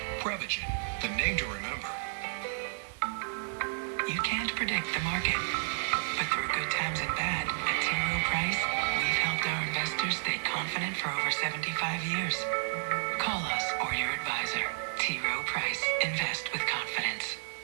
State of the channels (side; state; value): left; silent; digital silence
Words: Prevagen, the name to remember. You can't predict the market, but through good times and bad, at T. Rowe Price, we've helped our investors stay confident for over 75 years. Call us or your advisor. T. Rowe Price. Invest with confidence.